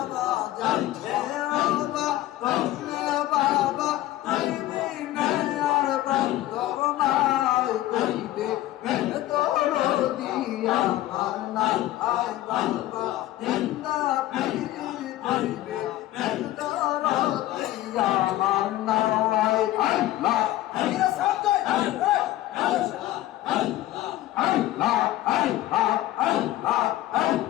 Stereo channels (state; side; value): quieter; right; 15.1 dB